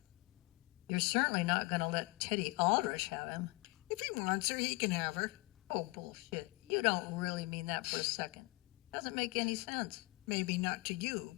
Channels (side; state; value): right; quieter; 24.4 dB